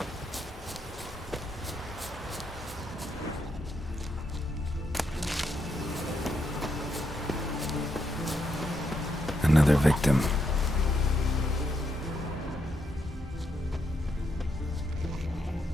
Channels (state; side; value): normal; both; correlation 0.79